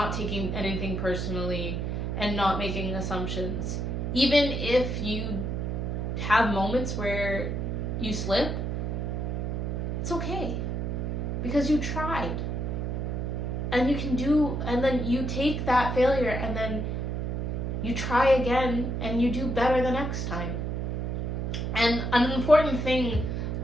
taking anything personally and not making assumptions, even if you have moments where you slip, it's okay, because you tried. And you can and then you take that failure and then you try again and you do better the next time. And an important thing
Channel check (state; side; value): noise; right; hum, 1 dB below the sound